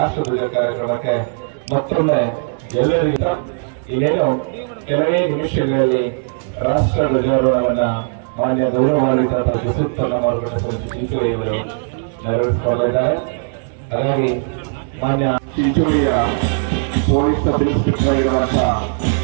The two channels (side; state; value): left; silent; digital silence